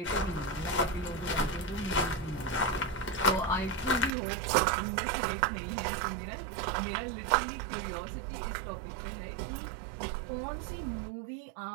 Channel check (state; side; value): drops out; left; at 4.1 s